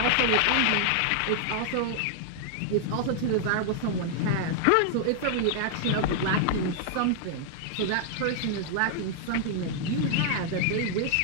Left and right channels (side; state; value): both; different; correlation -0.01